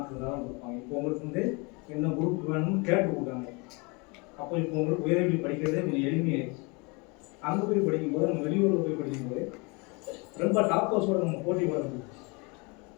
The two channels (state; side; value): quieter; right; 29.3 dB